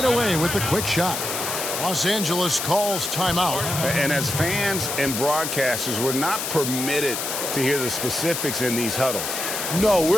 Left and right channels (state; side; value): noise; left; hiss, 3 dB below the sound